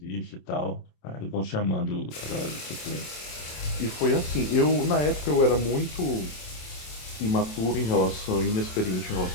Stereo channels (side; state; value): right; late; 27 ms